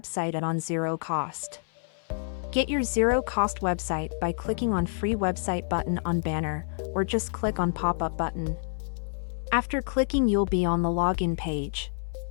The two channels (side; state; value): right; silent; 59 dB below the other